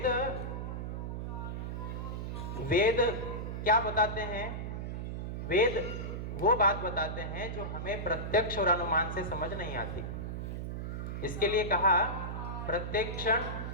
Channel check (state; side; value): noise; right; hum, 4 dB below the sound